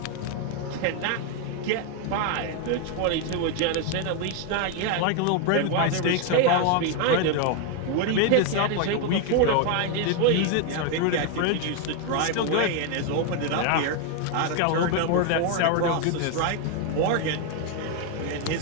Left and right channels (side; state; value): both; different; correlation 0.01